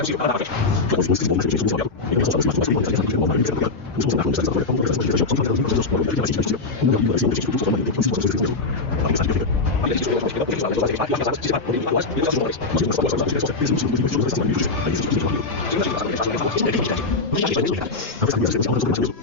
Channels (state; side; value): quieter; right; 3.7 dB